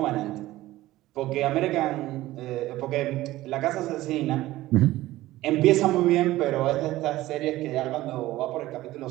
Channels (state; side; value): quieter; left; 16.5 dB